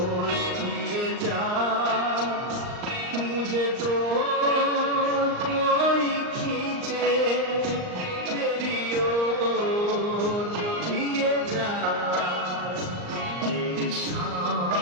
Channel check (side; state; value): left; late; 39 ms